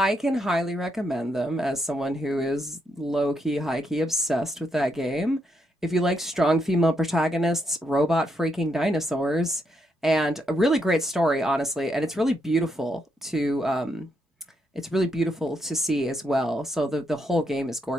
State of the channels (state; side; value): normal; both; correlation 0.79